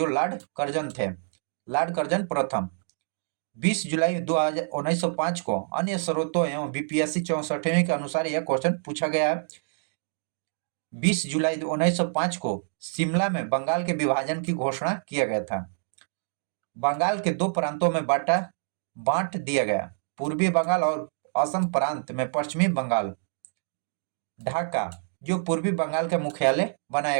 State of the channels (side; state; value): left; silent; digital silence